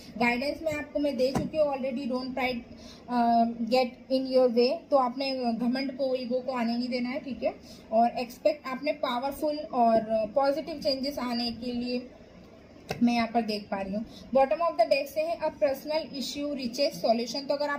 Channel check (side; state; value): both; identical; correlation 1.00